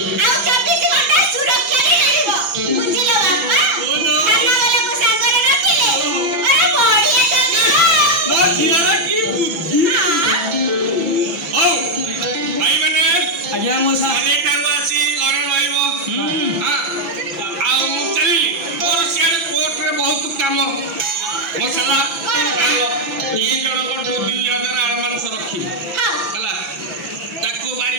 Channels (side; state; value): left; late; 6.0 ms